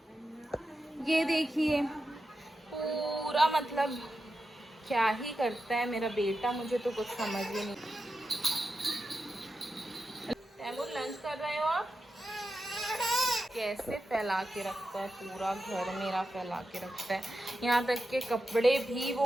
ये देखिए पूरा मतलब क्या ही करता है मेरा बेटा, मुझे तो कुछ समझ ही नहीं। तैमूर, लंच कर रहे हो आप? कैसे फैला के रखता है, पूरा घर मेरा फैला के रखता है, यहाँ तक के कपड़े भी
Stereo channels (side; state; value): both; normal; correlation 0.90